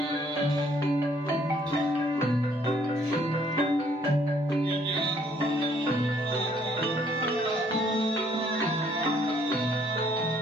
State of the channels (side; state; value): both; normal; correlation 0.64